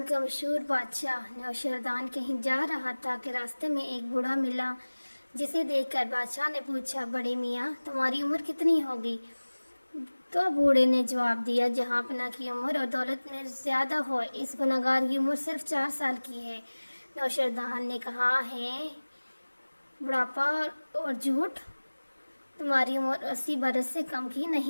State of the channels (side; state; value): both; inverted; correlation -1.00